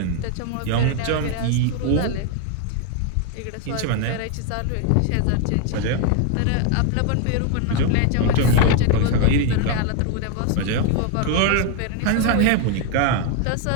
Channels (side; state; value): both; different; correlation 0.01